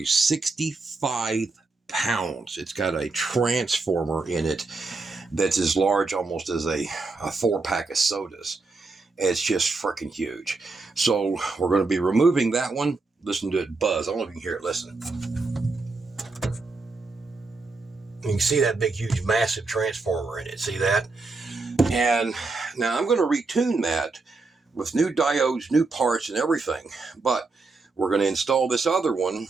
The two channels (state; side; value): quieter; left; 3.8 dB